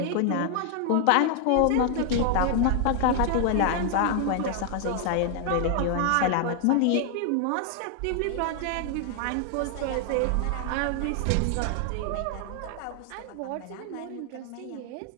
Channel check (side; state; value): both; different; correlation 0.00